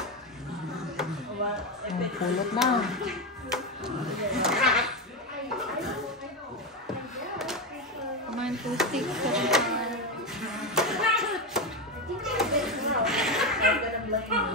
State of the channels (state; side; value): normal; both; correlation 0.12